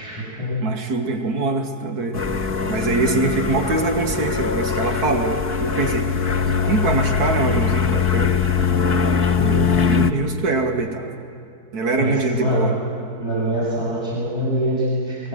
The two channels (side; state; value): left; late; 4.6 ms